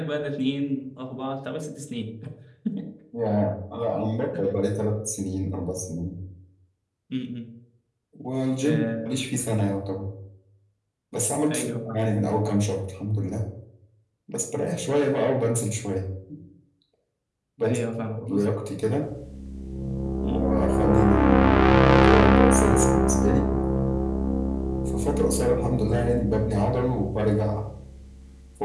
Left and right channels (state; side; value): identical; both; correlation 1.00